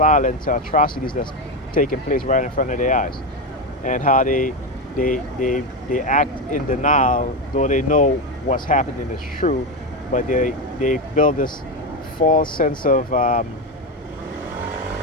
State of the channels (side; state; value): both; normal; correlation 0.13